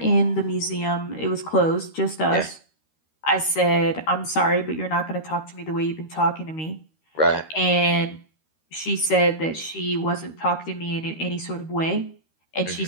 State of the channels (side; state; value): right; late; 13 ms